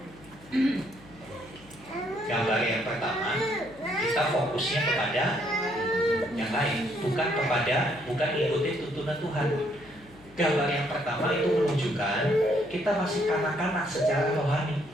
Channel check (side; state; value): left; noise; hum, 23 dB below the sound